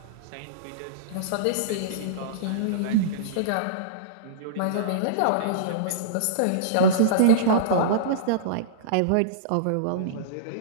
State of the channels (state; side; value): different; both; correlation -0.04